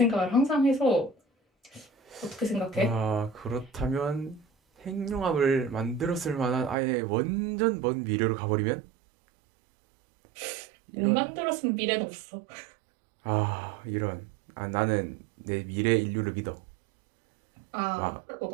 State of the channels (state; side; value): drops out; left; at 6.8 s